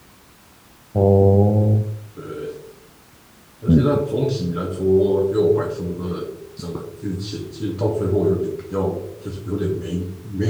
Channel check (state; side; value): identical; both; correlation 1.00